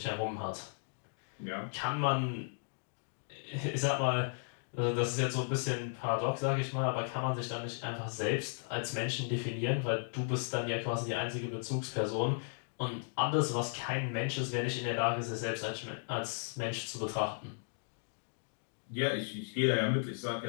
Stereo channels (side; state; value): right; silent; digital silence